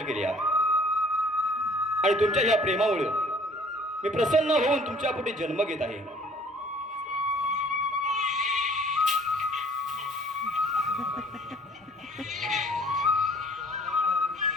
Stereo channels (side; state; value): both; normal; correlation 0.54